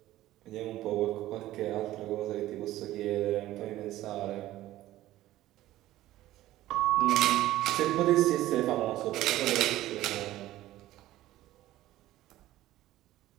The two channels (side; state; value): left; quieter; 15.1 dB